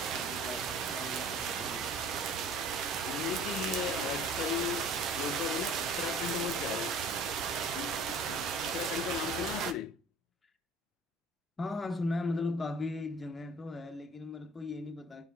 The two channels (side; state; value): both; normal; correlation 0.48